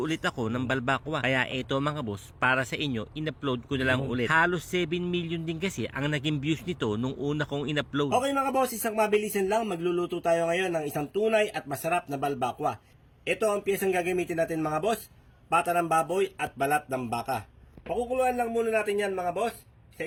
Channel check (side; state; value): both; identical; correlation 1.00